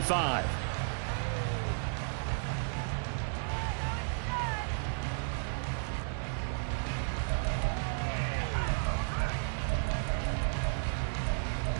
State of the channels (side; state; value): left; silent; 55 dB below the other